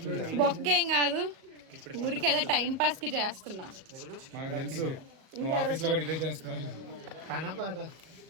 బొక్కేం కాదు, ఊరికి ఏదో టైం పాస్ కి చేస్తున్నా.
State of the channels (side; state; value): left; late; 37 ms